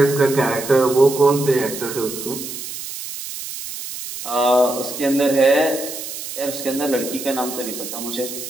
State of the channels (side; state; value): right; noise; hiss, 9 dB below the sound